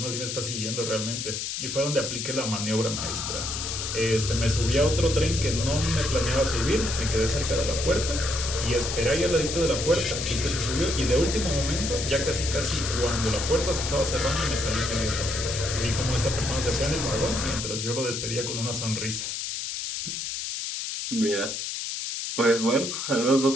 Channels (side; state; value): left; noise; hiss, 4 dB below the sound